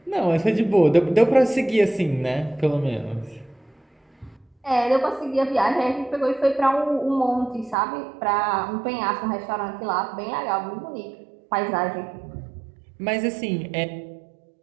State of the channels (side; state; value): left; drops out; at 7.8 s